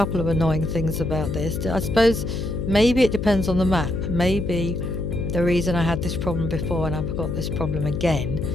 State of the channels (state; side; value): noise; left; hum, 4 dB below the sound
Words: of annoying things about this. I suppose maybe it depends on the map. Maybe the reason I had this problem before and I've got this problem again